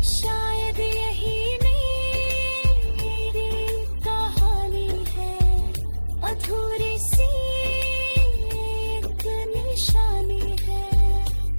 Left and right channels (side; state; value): both; inverted; correlation -1.00